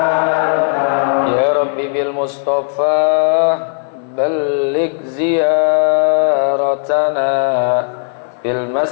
Ya Rabbi bil Mustafa balligh ziyaratana fil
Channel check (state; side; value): silent; right; 67 dB below the other